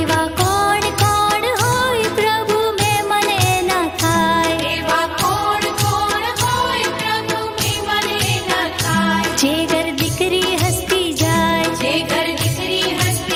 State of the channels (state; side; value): identical; both; correlation 1.00